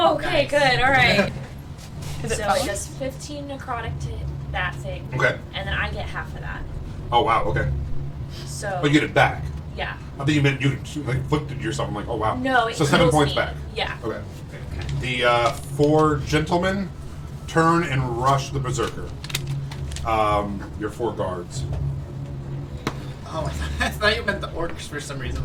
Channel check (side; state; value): both; identical; correlation 1.00